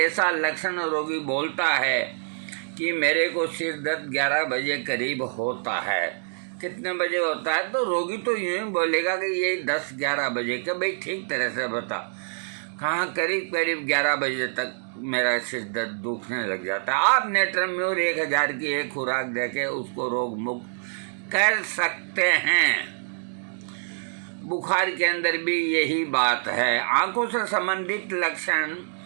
लक्षण रोगी बोलता है कि मेरे को सिर दर्द 11 बजे करीब होता है, कितने बजे होता है, तो रोगी तो यूँ ही बोलेगा कि ये 10-11 बजे का। भाई ठीक तरह से बता, कहाँ, करीब करीब 11 बजे तक मेरा सिर दर्द दुखने लग जाता है। आप नेत्रम्यूर 1000 की एक खुराक देके उसको रोग मुक्त कर सकते हैं। बुखार के अंदर भी यही बात है। आंखों से संबंधित लक्षण,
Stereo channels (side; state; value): left; silent; digital silence